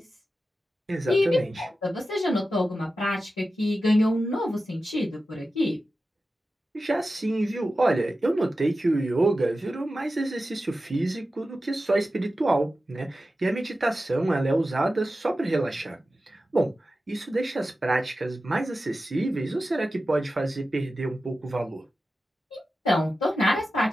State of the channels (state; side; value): normal; both; correlation 0.93